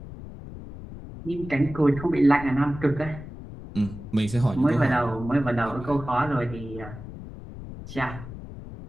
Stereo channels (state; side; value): noise; left; rumble, 13 dB below the sound